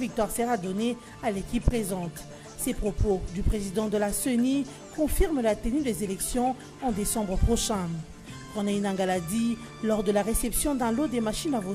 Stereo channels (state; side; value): identical; both; correlation 1.00